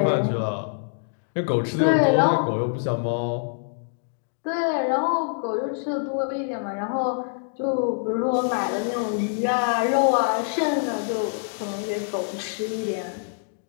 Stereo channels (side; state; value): right; silent; digital silence